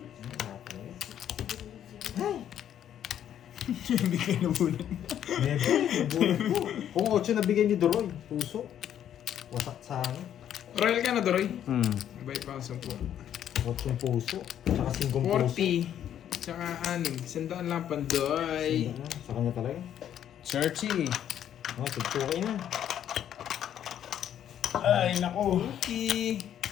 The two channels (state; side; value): quieter; right; 10.2 dB